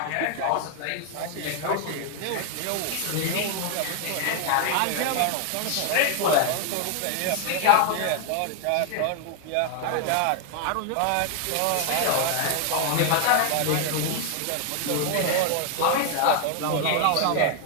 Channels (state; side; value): different; both; correlation 0.00